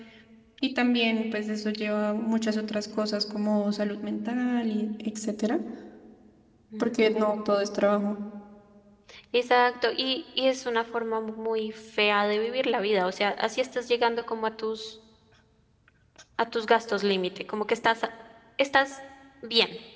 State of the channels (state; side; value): identical; both; correlation 1.00